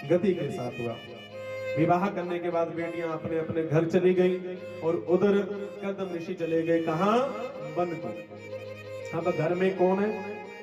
गति के साथ हुआ। विवाह करने के बाद बेटियां अपने अपने घर चली गई और उधर कदम ऋषि चले गए कहां? वन को। अब घर में कौन है?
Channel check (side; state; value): both; identical; correlation 1.00